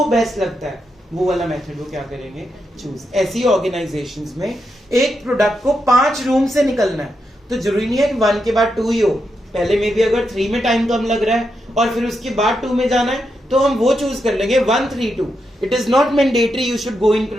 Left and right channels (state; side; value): normal; both; correlation 0.84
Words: बेस्ट लगता है वो वाला मेथड वो क्या करेंगे, चूज। ऐसी ऑर्गेनाइजेशंस में एक प्रोडक्ट को 5 रूम से निकलना है, तो जरूरी नहीं है कि 1 के बाद 2 ही हो, पहले में भी अगर 3 में टाइम कम लग रहा है और फिर उसके बाद 2 में जाना है तो हम वो चूज कर लेंगे 1, 3, 2। It is not mandatory you should go in